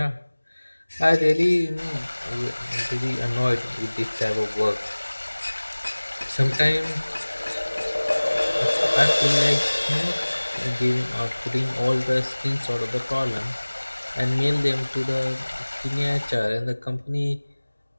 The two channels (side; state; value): both; inverted; correlation -1.00